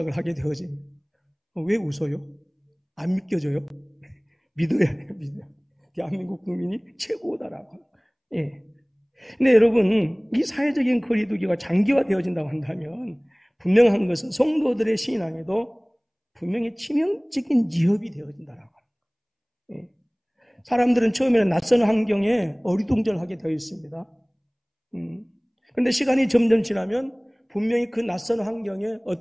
하게 되어집니다. 왜 웃어요? 안 믿겨져요? 믿어야 해요, 믿어야. 대한민국 국민이 최고다라고. 예. 근데 여러분, 이 사회적인 거리두기가 장기화되어진다고 한다면 분명한 것은 성도들의 신앙에도 분명히 치명적인 위협이 되어진다라고. 예. 사람들은 처음에는 낯선 환경에 어리둥절하게 되어 있습니다. 그런데 시간이 점점 지나면 분명히 그 낯선 환경에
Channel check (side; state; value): both; identical; correlation 1.00